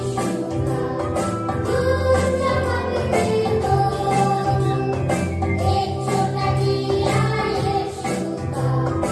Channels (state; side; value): identical; both; correlation 1.00